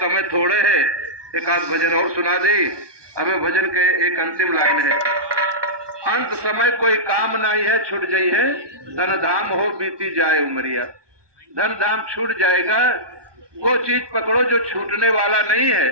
थोड़े है, एक आध भजन और सुना दे हमें। भजन के एक अंतिम लाइन है, अंत समय कोई काम नहीं है छूट जाई है, धन धाम हो बीती जाए उमरिया। धन धाम छूट जाएगा, वो चीज पकड़ो जो छूटने वाला नहीं है।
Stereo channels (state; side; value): late; left; 1.2 ms